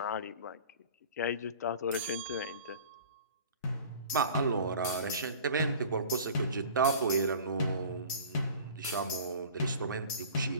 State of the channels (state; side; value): inverted; both; correlation -0.43